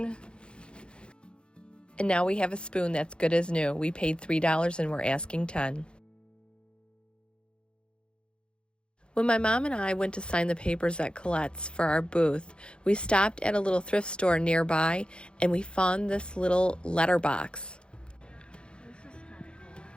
And now we have a spoon that's good as new. We paid $3 and we're asking $10. When my mom and I went to sign the papers at Collette's for our booth, we stopped at a little thrift store nearby and we found this little letterbox. This is kind of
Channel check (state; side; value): late; right; 0.054 ms